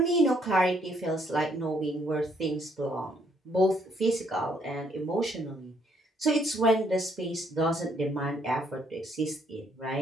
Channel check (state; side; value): normal; both; correlation 0.69